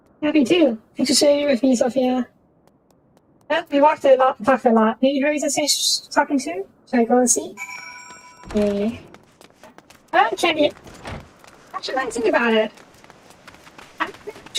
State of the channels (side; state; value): both; identical; correlation 1.00